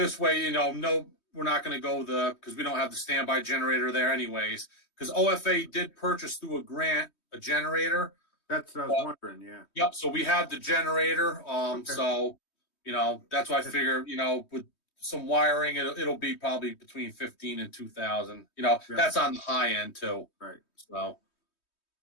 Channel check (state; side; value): late; right; 3.2 ms